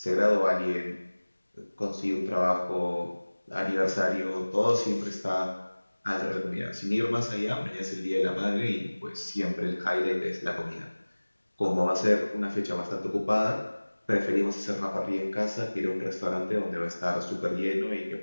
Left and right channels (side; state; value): both; inverted; correlation -1.00